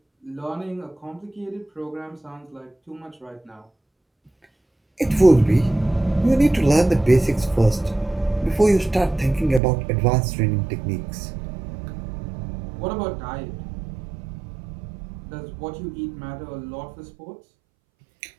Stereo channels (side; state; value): left; drops out; at 9.6 s